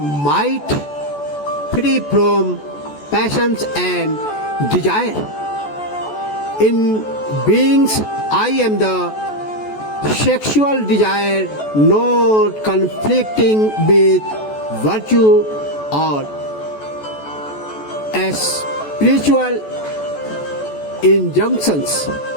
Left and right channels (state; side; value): late; right; 14 ms